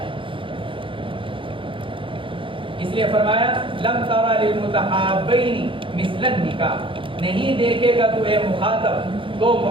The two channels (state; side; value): late; left; 0.25 ms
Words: اس لیے فرمایا لم ترى للمتحابین مثل النکاح، نہیں دیکھے گا تو اے مخاطب دو